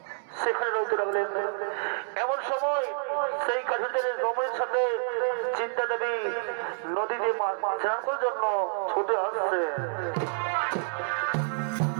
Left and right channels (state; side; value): silent; left; digital silence